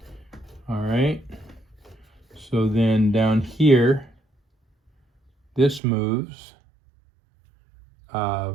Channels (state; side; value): drops out; left; at 5.8 s